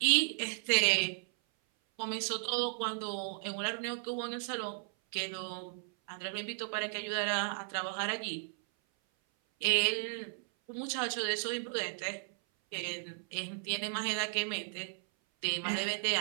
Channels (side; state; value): left; silent; 55 dB below the other